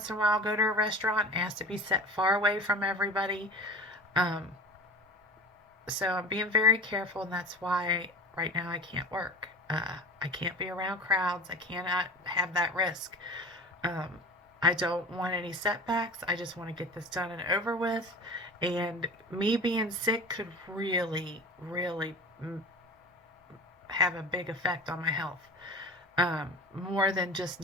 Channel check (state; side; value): normal; both; correlation 0.37